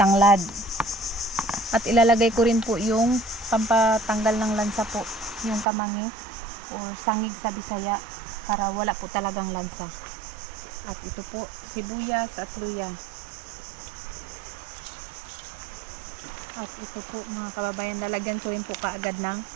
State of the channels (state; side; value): drops out; left; at 5.7 s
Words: At ilalagay ko rin po yung pampatanggal ng lansa po, yung kamangi o sangig sa Bisaya para wala po talagang lansa. At ito po, sibuyas at luya. At ito po mga kababayan, lalagyan ko rin po kaagad ng